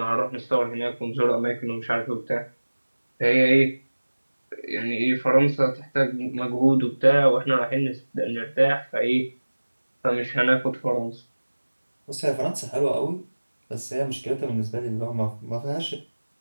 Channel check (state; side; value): inverted; both; correlation -1.00